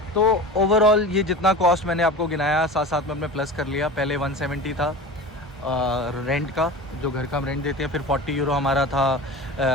तो ओवरऑल ये जितना कॉस्ट मैंने आपको गिनाया, साथ साथ में अपने प्लस कर लिया। पहले 170 था रेंट का, जो घर का हम रेंट देते हैं। फिर 40 यूरो हमारा था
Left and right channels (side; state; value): both; normal; correlation 0.33